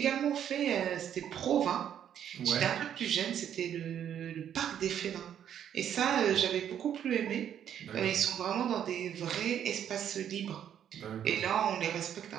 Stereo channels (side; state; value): left; quieter; 9.6 dB